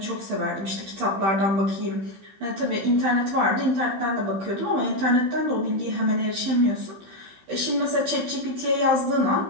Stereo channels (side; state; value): left; late; 15 ms